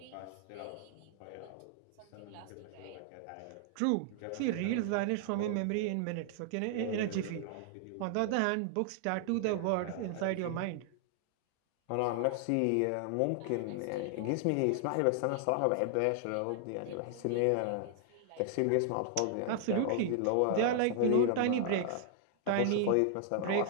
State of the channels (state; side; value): different; both; correlation 0.00